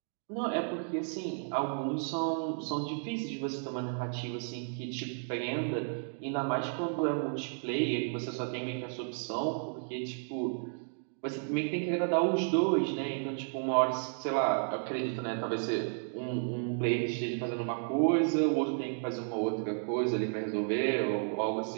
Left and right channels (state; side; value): silent; left; digital silence